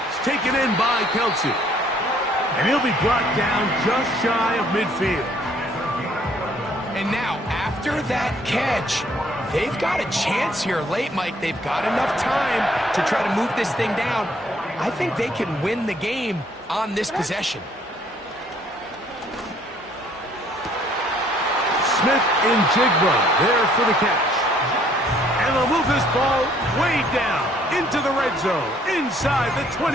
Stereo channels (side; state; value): both; normal; correlation 0.62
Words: taken in by Kelsey. And he'll be brought down just shy of midfield. And now, after that catch, they've got a chance here late, Mike. They've got enough time to try to move this thing down. I think they can win the game on this possession. Smith in Jigba there for the catch. And they'll move this ball way down into the red zone, inside the